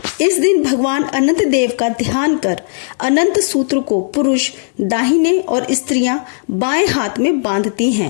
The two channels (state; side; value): silent; right; digital silence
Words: इस दिन भगवान अनंत देव का ध्यान कर अनंत सूत्र को पुरुष दाहिने और स्त्रियां बाएं हाथ में बांधती